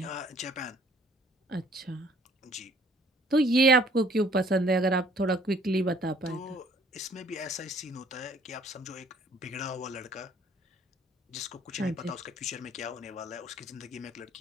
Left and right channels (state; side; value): normal; both; correlation 0.58